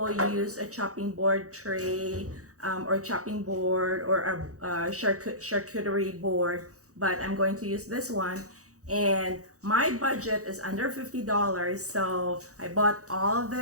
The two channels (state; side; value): late; left; 0.65 ms